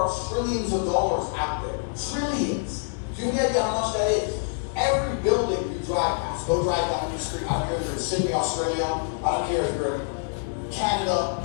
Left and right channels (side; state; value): right; silent; digital silence